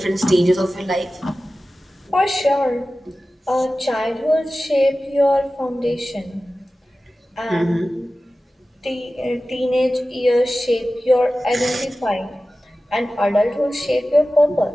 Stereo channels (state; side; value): normal; both; correlation 0.95